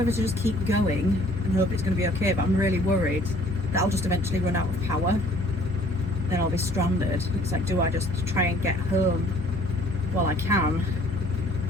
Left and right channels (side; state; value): both; normal; correlation 0.57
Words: to just keep going and hope it's gonna be okay, but I'm really worried that I'll just eventually run out of power. Then I'll be stranded. It's like, do I just try and get home while I can?